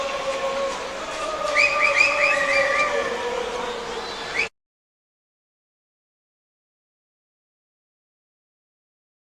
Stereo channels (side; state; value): both; identical; correlation 1.00